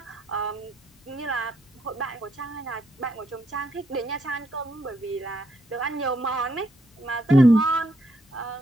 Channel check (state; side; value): normal; both; correlation 0.76